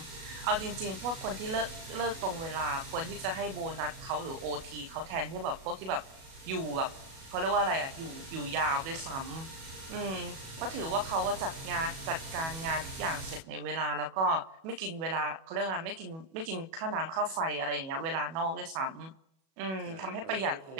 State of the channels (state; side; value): late; left; 37 ms